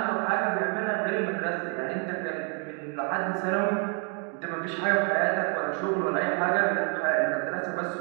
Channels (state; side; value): quieter; left; 38.9 dB